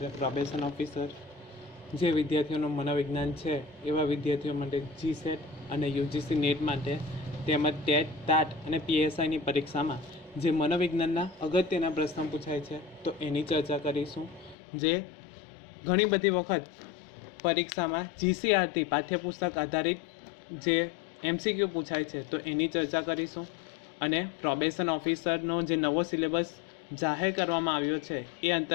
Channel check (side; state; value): right; drops out; at 14.6 s